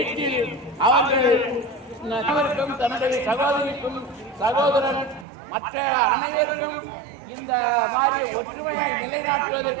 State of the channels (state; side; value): drops out; left; at 5.2 s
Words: அவர்கள் தன்னுடைய சகோதரிக்கும் சகோதரன் மற்ற அனைவருக்கும் இந்த மாதிரி ஒற்றுமையை